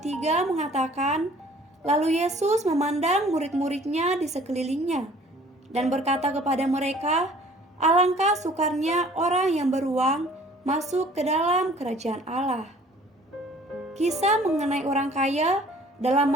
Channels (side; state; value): both; normal; correlation 0.53